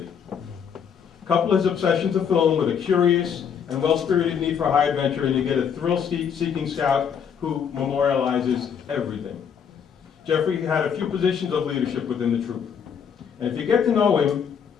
Couple his obsession to film with a curious and well-spirited need for high adventure, and you get a thrill-seeking scout who memorializes everything. Jeffrey had a few positions of leadership within the troop. And if you get to know him,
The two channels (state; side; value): quieter; right; 7.4 dB